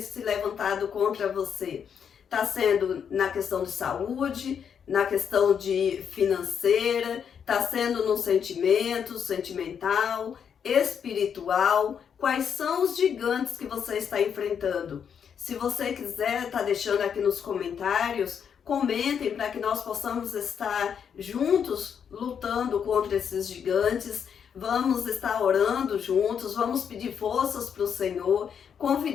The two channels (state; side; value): quieter; right; 7.6 dB